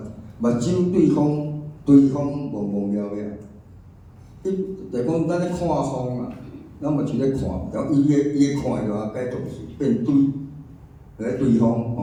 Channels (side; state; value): both; identical; correlation 1.00